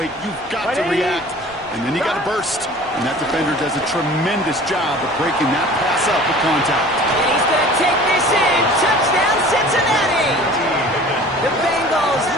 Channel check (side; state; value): left; noise; hum, 29 dB below the sound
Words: You've got to react. And then you got to burst. And that defender does a tremendous job of breaking that pass up with contact. And he's going to take this in. Touchdown, Cincinnati! The Bengals